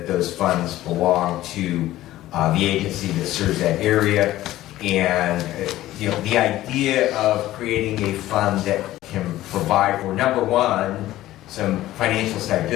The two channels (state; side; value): quieter; right; 15.1 dB